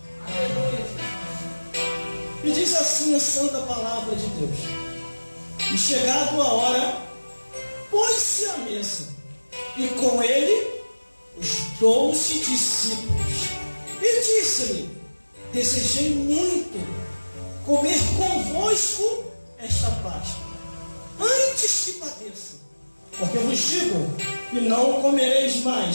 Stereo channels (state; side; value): inverted; both; correlation -1.00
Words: E diz assim a santa palavra de Deus: E chegado a hora, pôs-se à mesa, e com ele os 12 discípulos. E disse-lhe: Desejei muito comer convosco esta Páscoa, antes que padeça, porque vos digo que não comereis